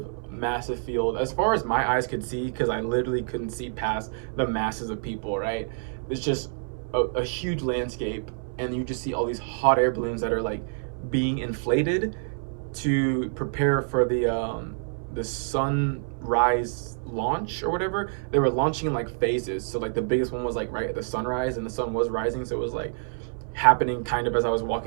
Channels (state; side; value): silent; left; 58 dB below the other